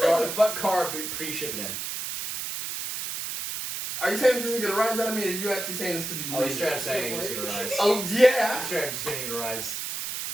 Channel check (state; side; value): noise; right; hiss, 5 dB below the sound